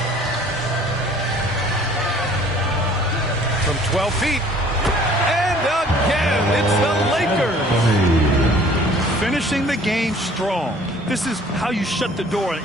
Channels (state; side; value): normal; both; correlation 0.53